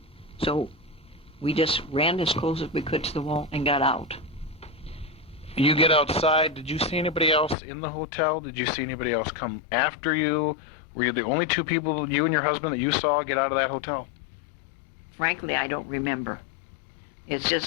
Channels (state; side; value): drops out; right; at 7.6 s